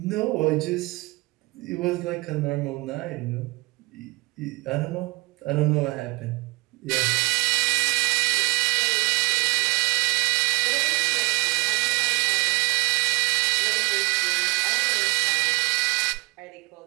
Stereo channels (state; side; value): quieter; left; 24.8 dB